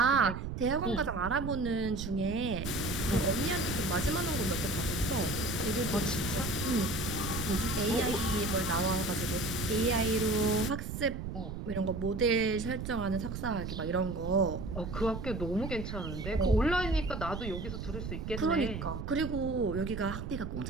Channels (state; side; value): noise; right; rumble, 6 dB below the sound